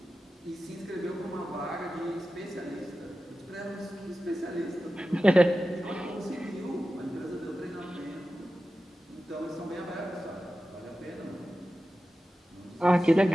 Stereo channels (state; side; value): normal; both; correlation 0.93